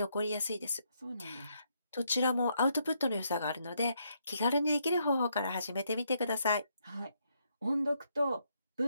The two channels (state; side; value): inverted; both; correlation -0.76